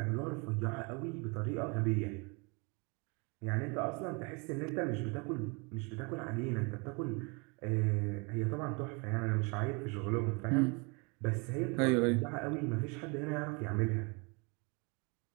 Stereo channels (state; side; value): quieter; left; 31.1 dB